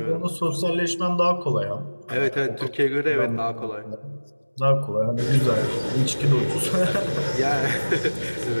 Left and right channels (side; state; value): both; inverted; correlation -1.00